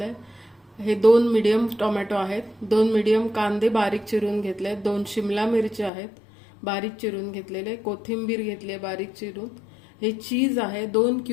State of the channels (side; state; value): right; drops out; at 5.9 s